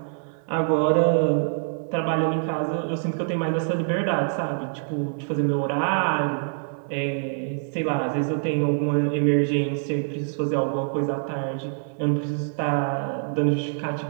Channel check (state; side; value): silent; left; digital silence